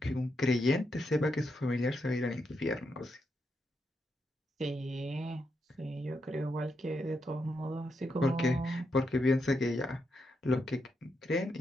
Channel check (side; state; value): both; normal; correlation 0.82